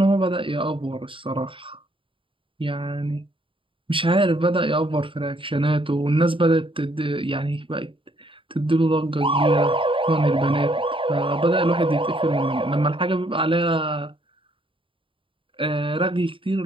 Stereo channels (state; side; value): late; left; 0.25 ms